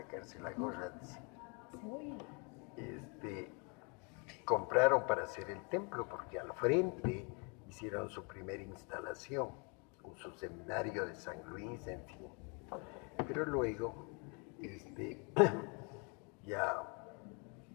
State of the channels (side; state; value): right; quieter; 34.0 dB